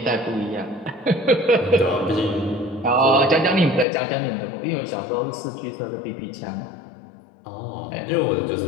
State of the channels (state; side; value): drops out; right; at 3.9 s